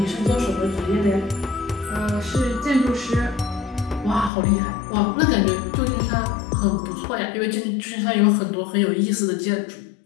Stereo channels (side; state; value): right; drops out; at 4.3 s